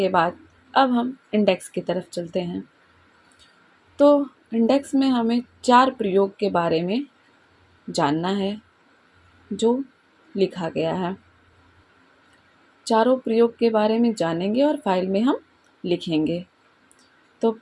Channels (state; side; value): identical; both; correlation 1.00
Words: बाद अब हम इंडेक्स की तरफ चलते हैं। तो इंडेक्स में हमें 4 प्रयोग के बारे में जानना है जो लिखा गया है। चारों प्रयोग के बारे में जानेंगे और फाइल में हम लिखेंगे। तो